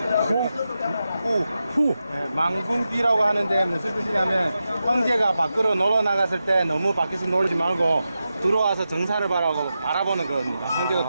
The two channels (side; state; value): both; inverted; correlation -0.90